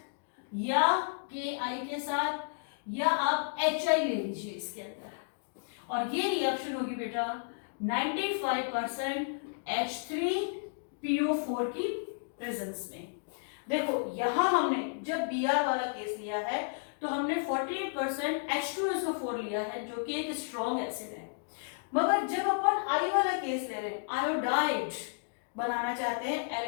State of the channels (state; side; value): silent; right; digital silence